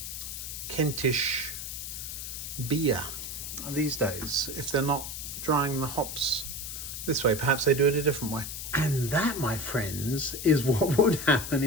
Kentish beer these days if they're not drying the hops this way? Perhaps they do it a different way. And that, my friends, is what would happen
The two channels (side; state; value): left; noise; hiss, 7 dB below the sound